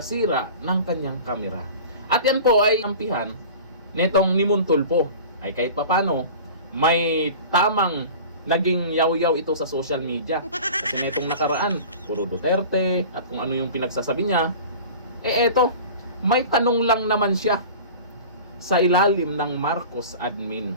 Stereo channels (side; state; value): both; inverted; correlation -0.38